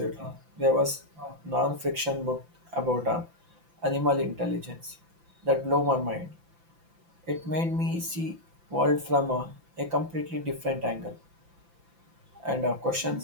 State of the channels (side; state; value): left; late; 5.9 ms